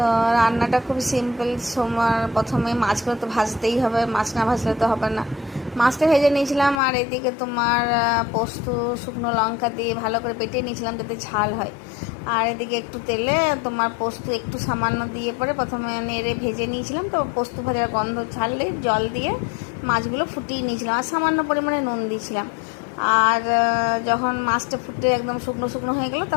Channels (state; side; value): drops out; right; at 6.8 s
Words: রান্নাটা খুব সিম্পল। তোমার প্রথমে মাছগুলো তো ভাজতেই হবে, মাছ না ভাজলে তো হবে না। মাছটা ভেজে নিয়েছিলাম, আর এদিকে তোমার পোস্ত শুকনো লঙ্কা দিয়ে ভালো করে বেটে নিয়েছিলাম যাতে ঝাল হয়। আর এদিকে একটু তেলে তোমার পোস্ত একটু সামান্য দিয়ে পরে প্রথমে নেড়ে ভেজে নিয়েছিলাম। তো পোস্ত ভাজার গন্ধ ছাড়লে জল দিয়ে মাছগুলো ফুটিয়ে নিয়েছিলাম, আর সামান্য পরিমাণে নুন দিয়েছিলাম। আর যখন মাছটা ফুটে একদম শুকনো শুকনো হয়ে গেল,